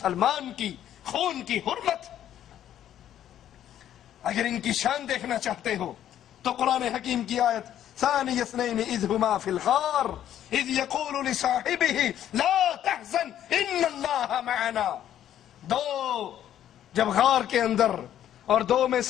کی خون کی حرمت، اگر ان کی شان دیکھنا چاہتے ہو تو قرآن حکیم کی آیت ثانی اثنین اذ ہما فی الغار اذ یقول لصاحبہ لا تحزن ان اللہ معنا، دو جب غار کے اندر اور دو میں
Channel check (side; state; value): right; quieter; 11.0 dB